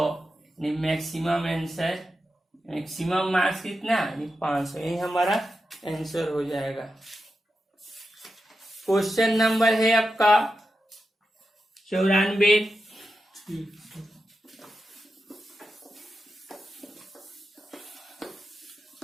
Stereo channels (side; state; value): both; normal; correlation 0.89